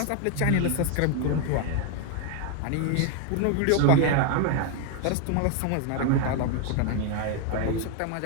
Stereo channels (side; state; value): both; different; correlation 0.01